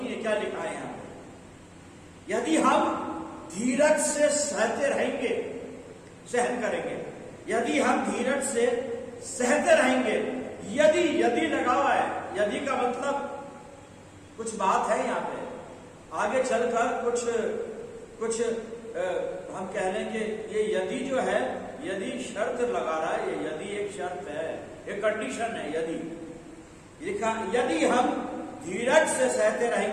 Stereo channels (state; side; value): identical; both; correlation 1.00